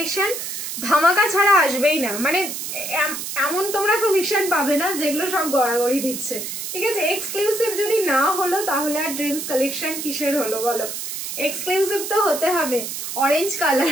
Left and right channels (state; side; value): noise; right; hiss, 6 dB below the sound